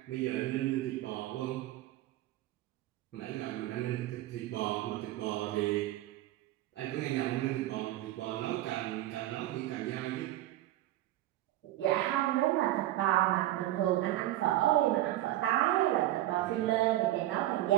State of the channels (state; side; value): quieter; left; 15.2 dB